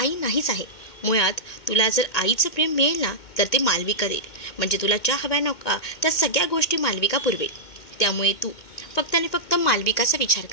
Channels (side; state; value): right; late; 2.1 ms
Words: नाहीच आहे. मुळात तुला जर आईचं प्रेम मिळेल ना तर ते मालविका देईल. म्हणजे तुला ज्या हव्या नका त्या सगळ्या गोष्टी मालविका पुरवेल. त्यामुळे तू फक्त आणि फक्त मालविकाचा विचार